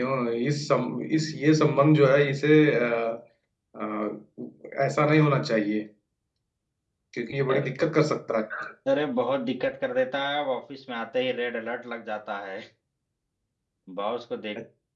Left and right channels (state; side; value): identical; both; correlation 1.00